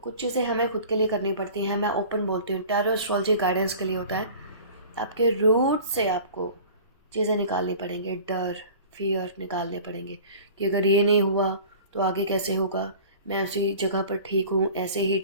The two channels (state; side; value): inverted; both; correlation -0.43